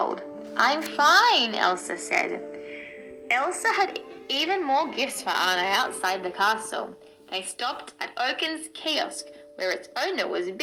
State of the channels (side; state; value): both; identical; correlation 1.00